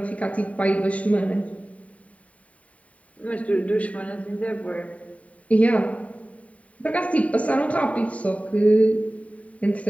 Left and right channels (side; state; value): right; late; 0.067 ms